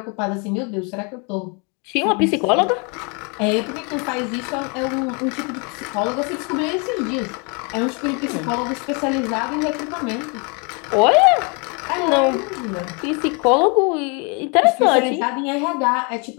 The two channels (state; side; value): quieter; right; 33.5 dB